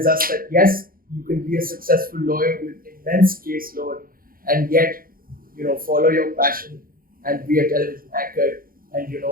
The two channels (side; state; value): left; late; 0.42 ms